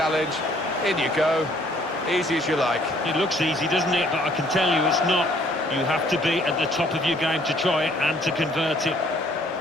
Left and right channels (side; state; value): both; normal; correlation 0.61